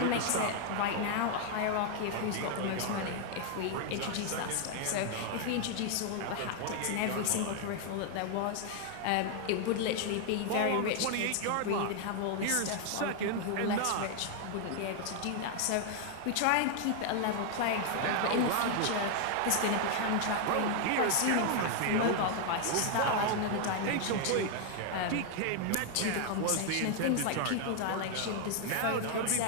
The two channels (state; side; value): different; both; correlation 0.00